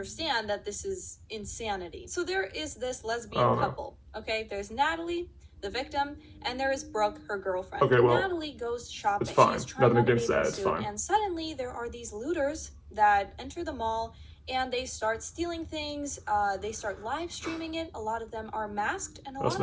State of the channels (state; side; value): identical; both; correlation 1.00